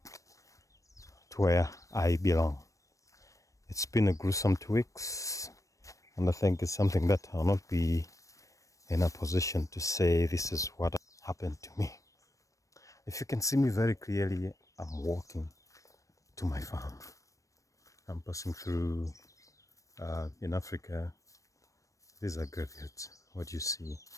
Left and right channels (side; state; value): right; late; 0.16 ms